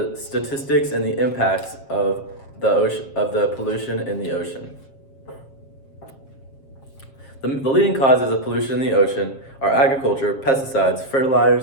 statistics, and the impacts of the pollution in the ocean. The leading causes of pollution in the ocean are agriculture, pesticides,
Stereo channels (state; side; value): late; right; 7.4 ms